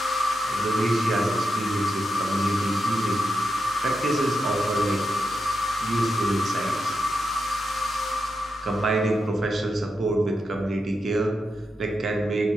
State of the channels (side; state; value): both; normal; correlation 0.86